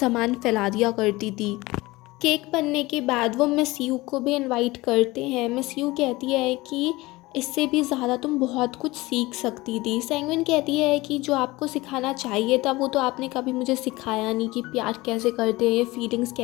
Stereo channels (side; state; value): right; quieter; 20.5 dB